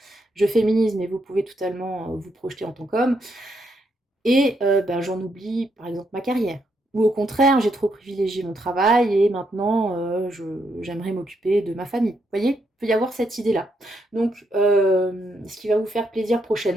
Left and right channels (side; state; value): both; normal; correlation 0.77